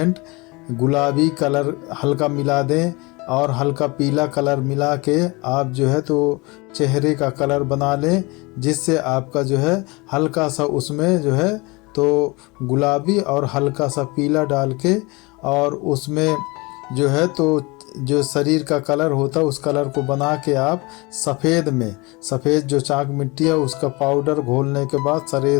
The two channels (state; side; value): quieter; right; 25.5 dB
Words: गुलाबी कलर हल्का मिला दें और हल्का पीला कलर मिला के आप जो है तो चेहरे का कलर बना लें, जिससे आपका जो है हल्का सा उसमें जो है तो गुलाबी और हल्का सा पीला डाल के और उसमें जो है तो जो शरीर का कलर होता है उस कलर को बना के आप सफ़ेद जो चाक मिट्टी है उसका पाउडर घोलने के बाद